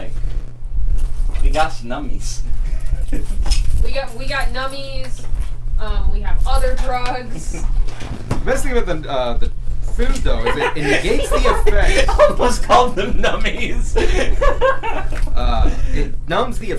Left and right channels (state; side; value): identical; both; correlation 1.00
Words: we got some nummies. We got nummies. We have other drugs. Best thing about the food though is it negates the effect. Almost called them nummies. It numbs the